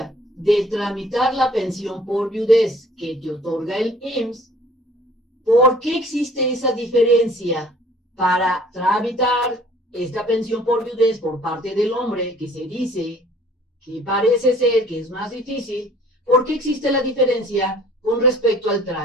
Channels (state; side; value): normal; both; correlation 0.54